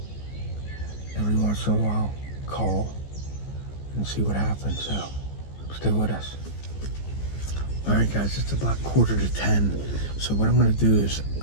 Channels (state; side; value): late; right; 14 ms